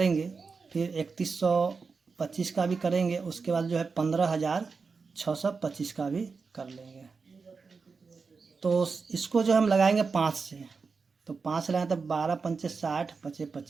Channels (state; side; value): quieter; left; 4.8 dB